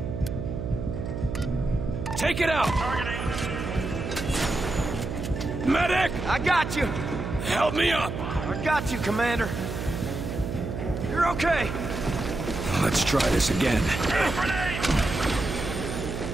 Take it out! Targeting. Medic! I got you. Help me up! I got you, Commander. You're okay. Let's try this again. Grenade!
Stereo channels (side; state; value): right; noise; hum, 5 dB below the sound